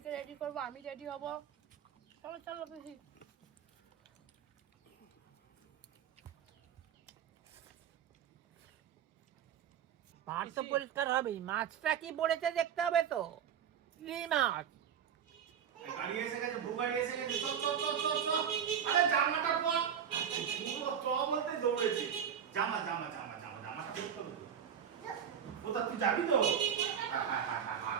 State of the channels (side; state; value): left; quieter; 8.3 dB